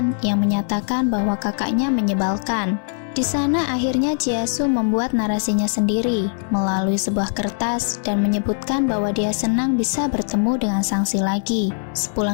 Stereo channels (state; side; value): silent; right; 65 dB below the other